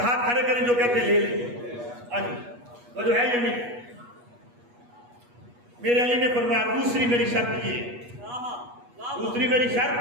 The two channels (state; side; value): late; left; 8.3 ms